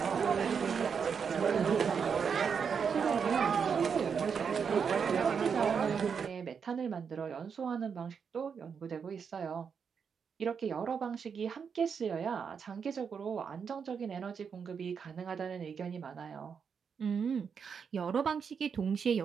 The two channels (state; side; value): quieter; left; 6.5 dB